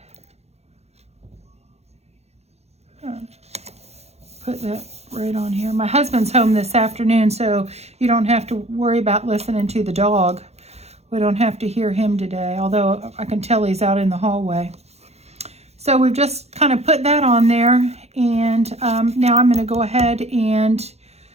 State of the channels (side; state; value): left; late; 0.31 ms